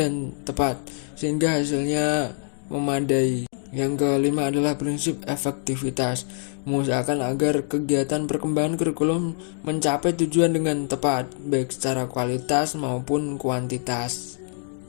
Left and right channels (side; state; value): right; silent; 57 dB below the other